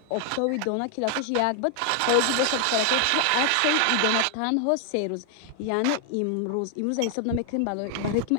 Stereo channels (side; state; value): both; different; correlation 0.00